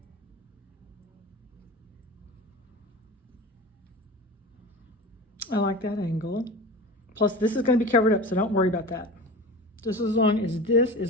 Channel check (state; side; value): normal; both; correlation 0.32